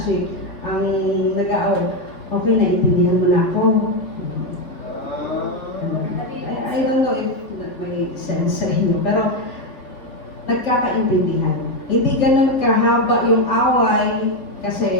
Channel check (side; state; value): right; late; 3.3 ms